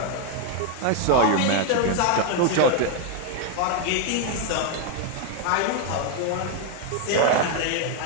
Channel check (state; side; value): different; both; correlation 0.01